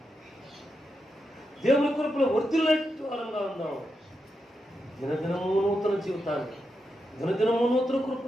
దేవుని కృపలో వర్ధిల్లేట్టు వారంగా ఉందాం. దినదినము నూతన జీవితానికి, దినదినము నూతన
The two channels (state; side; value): normal; both; correlation 0.86